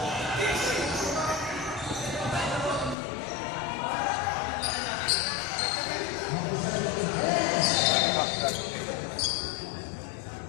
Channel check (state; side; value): drops out; right; at 3.0 s